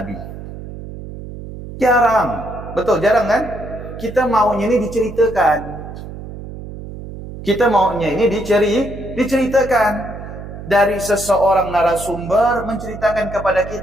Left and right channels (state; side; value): noise; right; hum, 12 dB below the sound